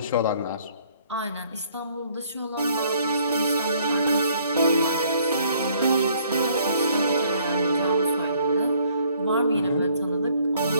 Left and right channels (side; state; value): both; inverted; correlation -0.63